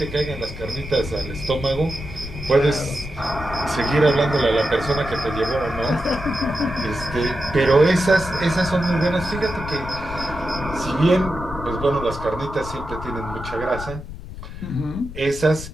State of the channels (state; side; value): noise; left; rumble, 11 dB below the sound